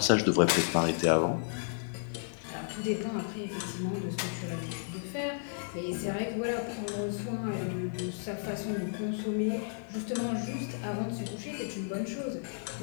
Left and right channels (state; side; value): silent; right; 56 dB below the other